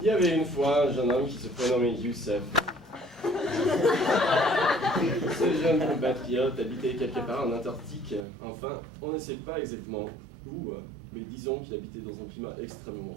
Il y avait une fois un jeune homme qui se prénommait Youssef. Ce jeune compatriote habitait quelque part en Antarctique. Enfin, on ne sait pas exactement où, mais disons qu'il habitait dans un climat extrêmement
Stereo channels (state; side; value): drops out; left; at 8.2 s